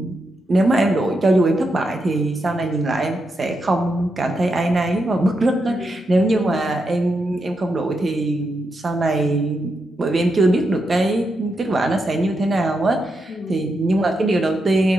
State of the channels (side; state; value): both; normal; correlation 0.84